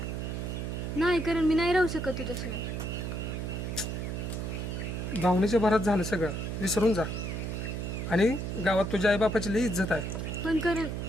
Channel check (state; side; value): noise; right; hum, 3 dB below the sound